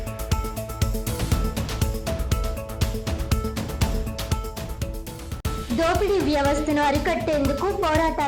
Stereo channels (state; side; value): identical; both; correlation 1.00